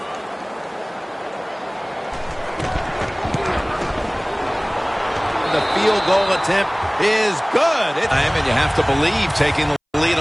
The field goal attempt is good. And you have to believe taking the lead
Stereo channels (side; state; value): both; identical; correlation 1.00